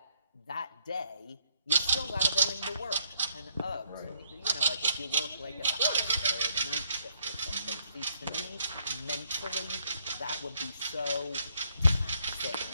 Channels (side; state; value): both; inverted; correlation -0.70